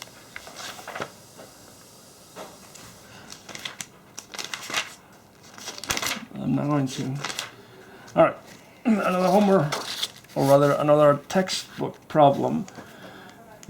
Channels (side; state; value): both; identical; correlation 1.00